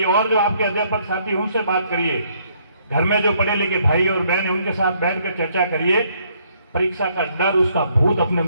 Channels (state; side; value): inverted; both; correlation -0.68